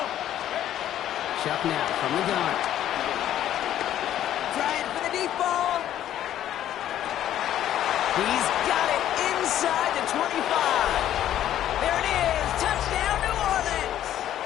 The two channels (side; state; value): right; quieter; 11.7 dB